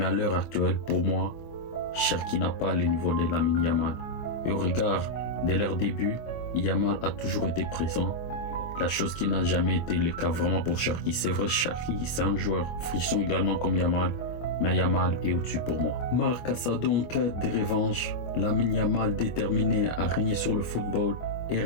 à l'heure actuelle, pour moi, Cherki n'a pas le niveau de Lamine Yamal. Et au regard de leur début, Yamal a toujours été présent. La chose qui n'a jamais été le cas vraiment pour Cherki. C'est vrai, Cherki, c'est un joueur frisson également comme Yamal, mais Yamal est au-dessus pour moi. Marc Casado en quête de revanche, Lamine Yamal déterminé à régner sur le football et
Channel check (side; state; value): right; late; 24 ms